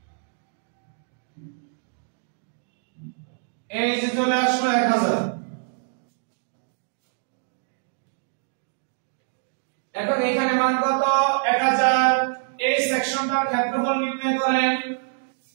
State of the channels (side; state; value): left; silent; digital silence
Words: এই যে চলে আসলো 1000। এখন এখানে মান কত? 1000। এই সেকশনটার ক্ষেত্রফল নির্ণয় করেন,